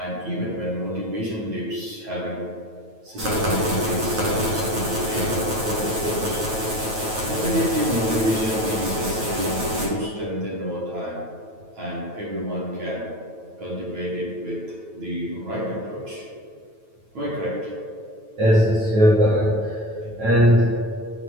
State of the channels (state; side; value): late; left; 9.2 ms